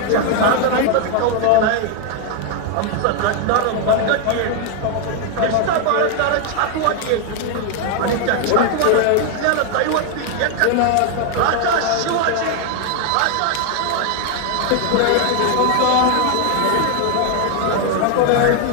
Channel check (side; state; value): both; different; correlation 0.00